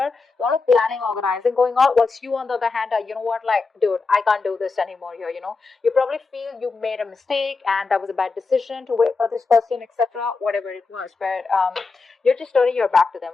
A lot of planning, organizing going on. Whilst you, on the other hand, are, like, dude, I can't do this anymore here, You probably feel you made a mistake and that was a bad decision to wait for this person, etc. Whatever it was. But you're just turning your back to them,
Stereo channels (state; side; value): quieter; right; 4.2 dB